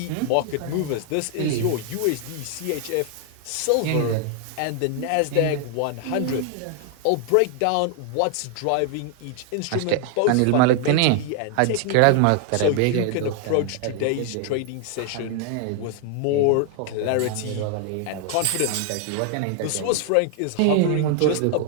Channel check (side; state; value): both; different; correlation 0.00